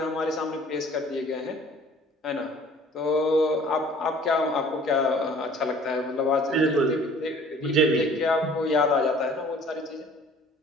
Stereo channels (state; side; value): normal; both; correlation 0.51